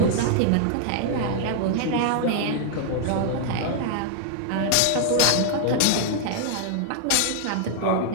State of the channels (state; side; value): different; both; correlation 0.00